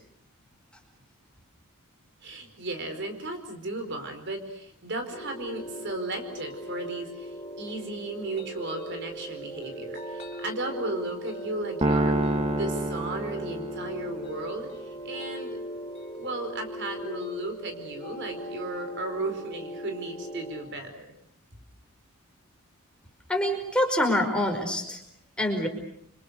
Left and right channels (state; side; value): normal; both; correlation 0.39